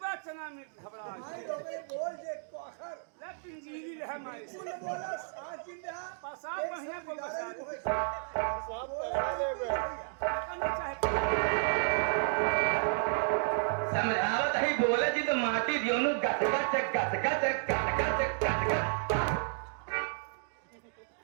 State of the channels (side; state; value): left; silent; digital silence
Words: चना में घबरा भाई लोगे बोल जे कोखर ले पिंजीरी रह माई बोल बोला साथ दिन रहा पसाब बढ़िया को बसा सब पहला ले करना चाहे समझावत ही बोले जी तो माटी दियो नु गट गट गट गट गट गट गट